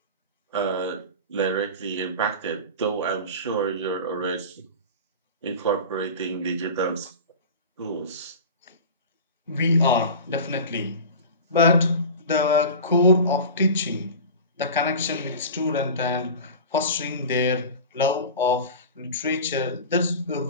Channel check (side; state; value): both; inverted; correlation -0.32